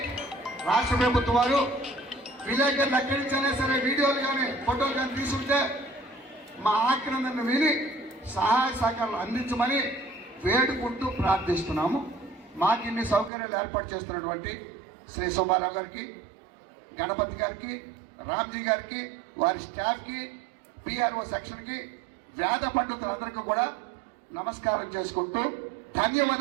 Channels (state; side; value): drops out; left; at 13.3 s